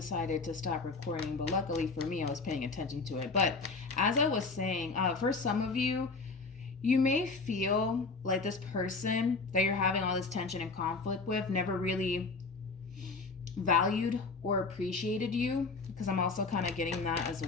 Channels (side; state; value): right; quieter; 4.1 dB